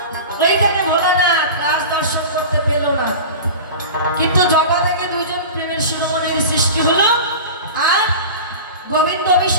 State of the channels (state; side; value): inverted; both; correlation -0.33